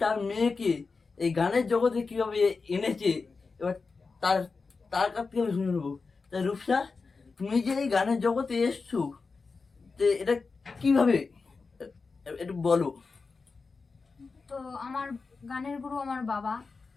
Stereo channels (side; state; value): right; quieter; 4.4 dB